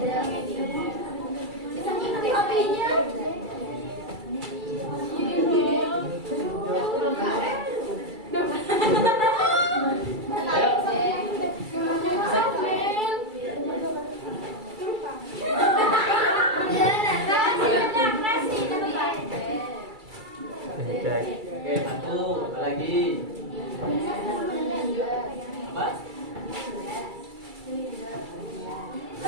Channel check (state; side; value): late; left; 2.3 ms